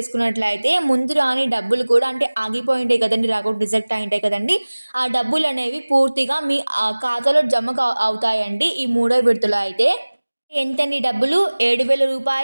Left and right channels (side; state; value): both; inverted; correlation -1.00